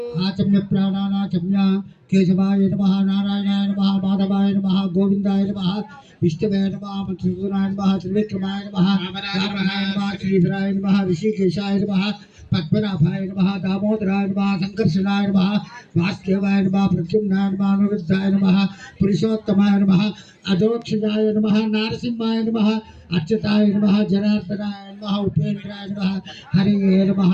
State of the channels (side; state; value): both; identical; correlation 1.00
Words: आचम्य प्राणानाचम्य केशवाय नमः नारायणाय नमः माधवाय नमः गोविंदाय नमः विष्णवे नमः मधुसूदनाय नमः त्रिविक्रमाय नमः रामाय नमः श्रीधराय नमः ऋषिकेशाय नमः पद्मनाभाय नमः दामोदराय नमः संकर्षणाय नमः वासुदेवाय नमः प्रद्युम्नाय नमः अनिरुद्धाय नमः पुरुषोत्तमाय नमः अधोक्षजाय नमः नारसिंहाय नमः अच्युताय नमः जनार्दनाय नमः उपेन्द्राय नमः हरे नमः